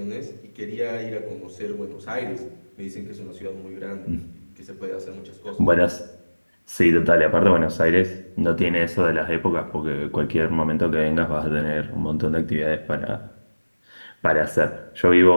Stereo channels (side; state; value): both; inverted; correlation -1.00